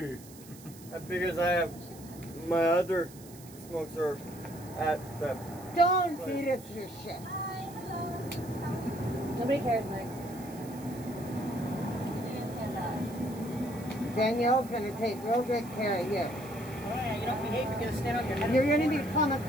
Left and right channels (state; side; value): noise; right; hiss, 19 dB below the sound